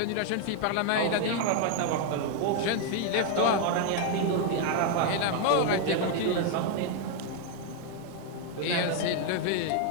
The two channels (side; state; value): both; different; correlation 0.00